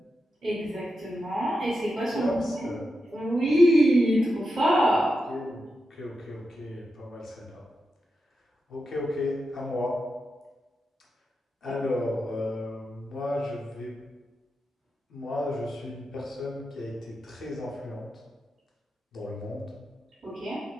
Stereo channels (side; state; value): both; normal; correlation 0.88